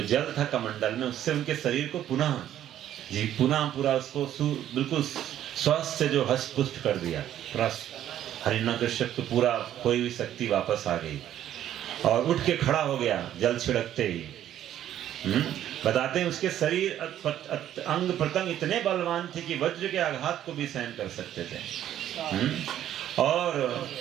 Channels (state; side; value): quieter; left; 11.5 dB